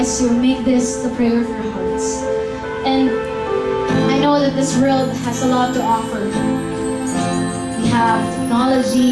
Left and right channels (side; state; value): both; identical; correlation 1.00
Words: to make this the prayer of your hearts. And I know that this world has a lot to offer. We have